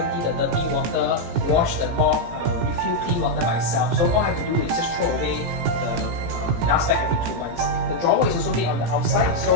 the dirty water, wash the mop, refill clean water by itself. So all I have to do is just throw away the dust bag every 2 months. The drawer is also made on the outside,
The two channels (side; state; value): left; late; 17 ms